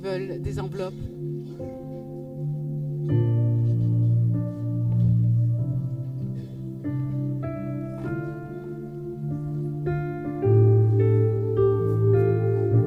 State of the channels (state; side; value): identical; both; correlation 1.00